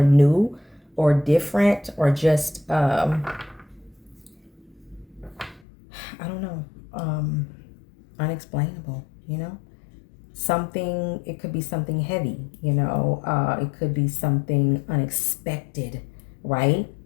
new or different or just, I don't know, unexplainable, you know, something, it could be something heavy, you know, it could be something unexpected, right?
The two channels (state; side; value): drops out; right; at 5.6 s